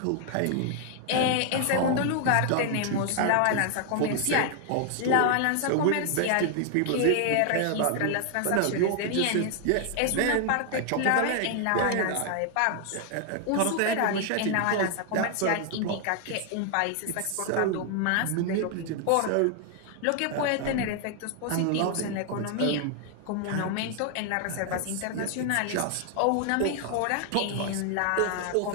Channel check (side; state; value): both; different; correlation 0.00